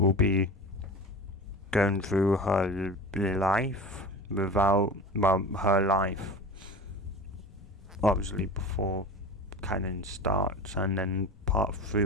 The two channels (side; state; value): both; normal; correlation 0.34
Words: be going through her life her life obviously before canon starts, and then part 3